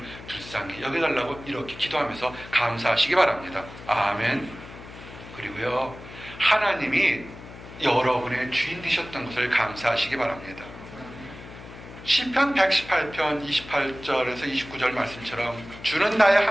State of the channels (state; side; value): noise; left; hum, 15 dB below the sound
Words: 불쌍히 여겨달라고 이렇게 기도하면서 감사하시기 바랍니다. 아멘. 그리고요, 하나님이 여러분의 주인 되셨던 것을 감사하시기 바랍니다. 시편 118편 28절에서 29절 말씀처럼 주는 나의